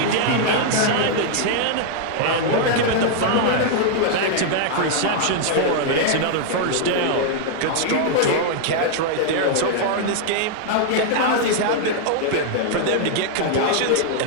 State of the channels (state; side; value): different; both; correlation -0.01